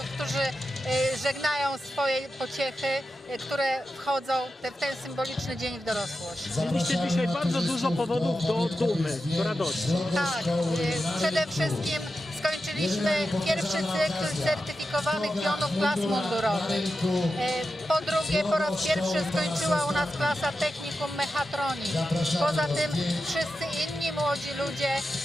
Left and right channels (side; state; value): both; normal; correlation 0.90